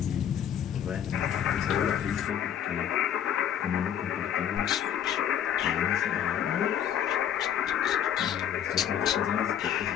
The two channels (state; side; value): quieter; right; 9.6 dB